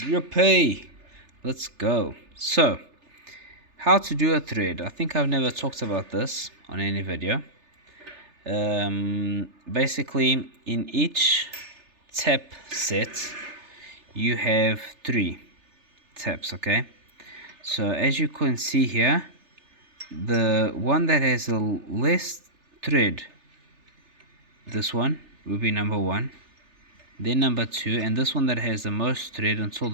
Let's go. So, how to do a thread. I think I've never talked about this on any video. Basically, in each tab set, you have 3 tabs, okay? So, as you can see here, the one that has the less thread, this one will be number 1, then number 2, and this one that has the most thread until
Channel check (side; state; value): left; late; 3.3 ms